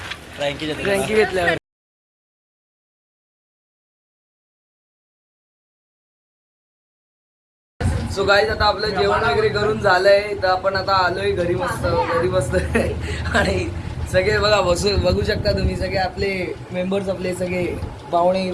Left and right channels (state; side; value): identical; both; correlation 1.00